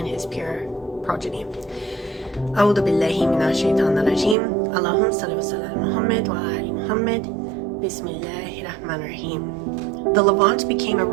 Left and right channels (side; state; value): left; drops out; at 4.4 s